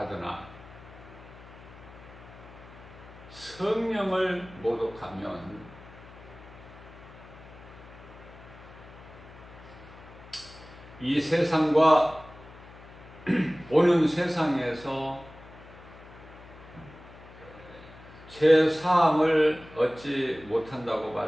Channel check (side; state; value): left; noise; hum, 19 dB below the sound